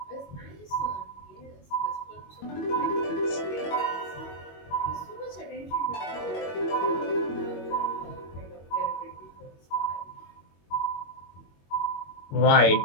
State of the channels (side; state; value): right; late; 21 ms